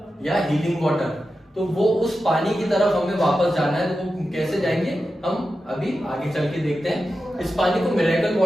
या हीलिंग वाटर, तो वो उस पानी की तरफ हमें वापस जाना है। तो वो कैसे जाएंगे हम अभी आगे चल के देखते हैं। इस पानी को मिरेकल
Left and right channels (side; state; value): both; normal; correlation 0.91